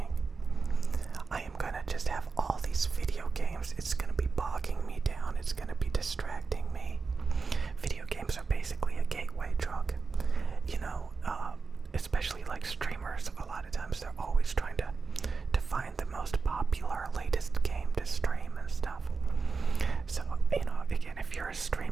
I am gonna just have all these video games. It's gonna be bogging me down. It's gonna be distracting me. Video games are basically a gateway drug. You know, especially like streamers, a lot of times they're always trying to find the most popular, latest game to stream and stuff. So, you know, again, if you're a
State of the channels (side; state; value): left; quieter; 4.7 dB